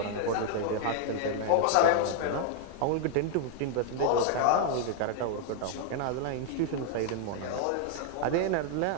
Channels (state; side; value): different; both; correlation 0.00